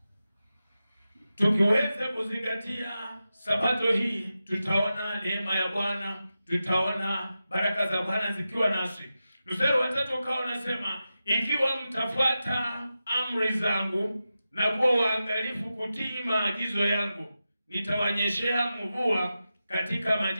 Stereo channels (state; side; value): inverted; both; correlation -0.92